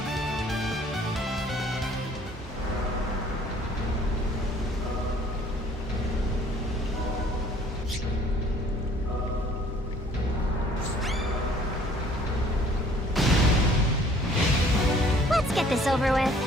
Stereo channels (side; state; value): both; normal; correlation 0.56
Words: Get this over with.